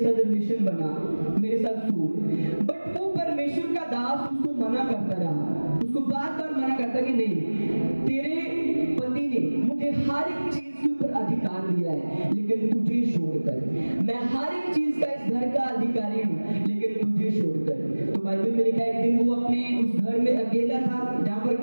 रिलेशन बना, मेरे साथ सो। बट वो परमेश्वर का दास उसको मना करता रहा, उसको बार बार मना करता कि नहीं, तेरे पति ने मुझे हर एक चीज के ऊपर अधिकार दिया है, लेकिन तुझे छोड़कर। मैं हर एक चीज का इस घर का अधिकारी हूँ, लेकिन तुझे छोड़कर। तो बाइबल में लिखा है एक दिन वो अपने उस घर में अकेला था जहाँ पर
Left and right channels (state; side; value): inverted; both; correlation -1.00